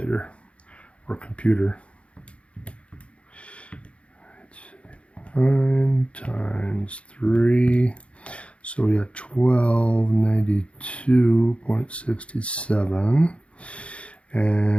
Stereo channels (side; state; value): right; late; 0.061 ms